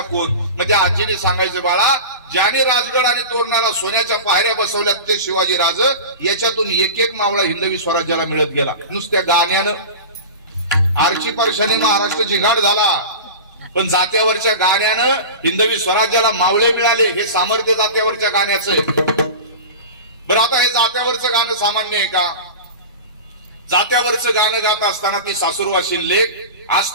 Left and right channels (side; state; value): both; inverted; correlation -0.31